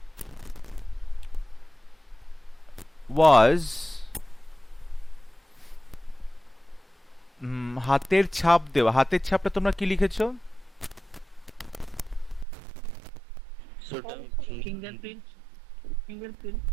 was হাতের ছাপ দেওয়া হাতের ছাপটা তোমরা কি লিখেছো Fingerprint.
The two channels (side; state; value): left; drops out; at 12.5 s